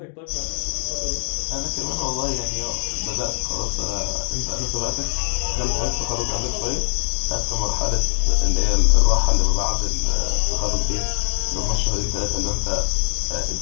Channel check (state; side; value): silent; right; digital silence